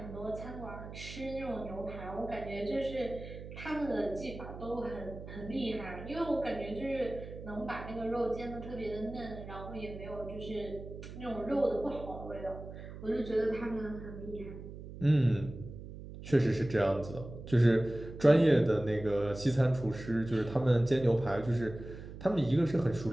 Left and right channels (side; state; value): right; noise; hum, 12 dB below the sound